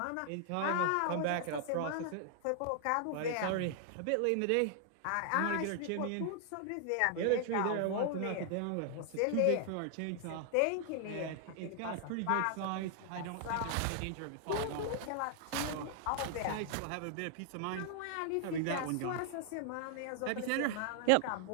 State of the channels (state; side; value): different; both; correlation 0.00